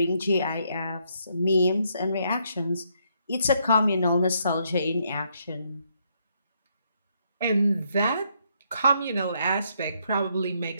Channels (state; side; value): inverted; both; correlation -0.74